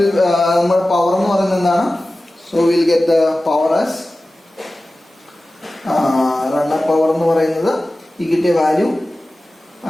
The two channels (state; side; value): normal; both; correlation 0.96